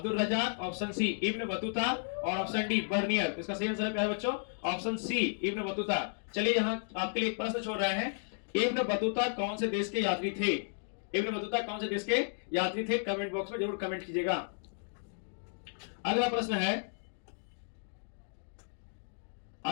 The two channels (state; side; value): silent; right; digital silence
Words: Razzaq, option C Ibn Battuta और ऑप्शन डी बर्नियर। इसका सही आंसर है प्यारे बच्चों ऑप्शन सी इब्न बतूता। चलिए यहाँ आपके लिए एक प्रश्न छोड़ रहे हैं। इब्न बतूता कौन से देश के यात्री थे। कमेंट बॉक्स में जरूर कमेंट कीजिएगा। अगला